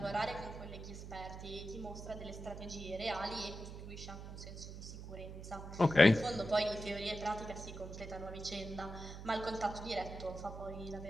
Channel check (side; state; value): right; noise; hum, 10 dB below the sound